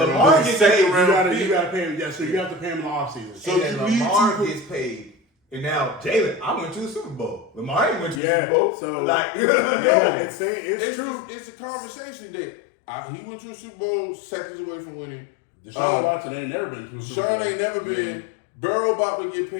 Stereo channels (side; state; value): right; drops out; at 8.2 s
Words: it. gets Second paid, You round gotta pick. pay him. Yeah, so you have to pay him in the offseason. So and then you need Lamar to- gets paid. And now Jalen, I went to the Super Bowl. Lamar ain't went to the Yeah, Super Bowl. so- like, Yeah, it's true. It's a conversation that he went to a Super Bowl seconds away from winning. Deshaun Watson ain't never been to a Super Sean Bowl. ain't never been. Burrow about to get